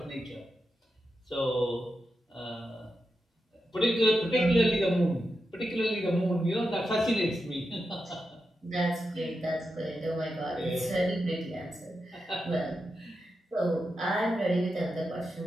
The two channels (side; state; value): both; normal; correlation 0.88